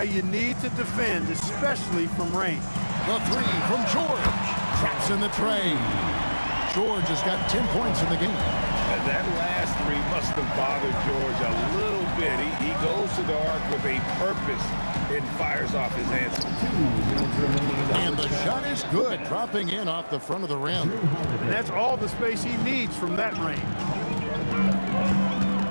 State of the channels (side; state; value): both; inverted; correlation -1.00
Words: you need to defend, especially from range. The 3 from George. Traps in the tray. George has got 10 points in the game. And that last 3 must have bothered George a little bit. He goes to the arc with a purpose and fires off his answer. And the shot is good, dropping in off the front of the rim. And that's all the space he needs from that range.